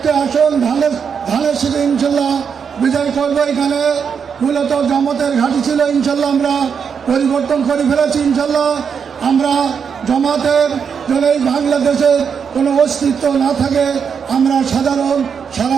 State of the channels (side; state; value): left; quieter; 6.7 dB